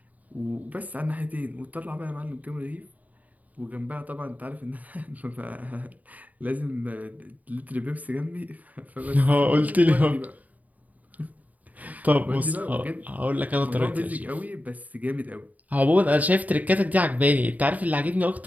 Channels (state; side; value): late; left; 0.075 ms